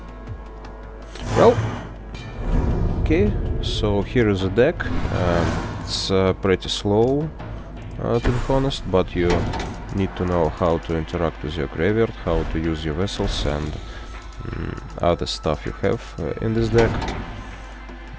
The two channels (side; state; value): both; identical; correlation 1.00